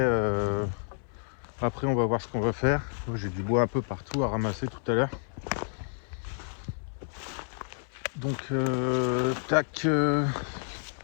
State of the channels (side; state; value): right; silent; 58 dB below the other